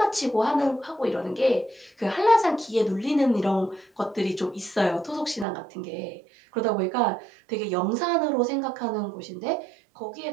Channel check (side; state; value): left; drops out; at 5.5 s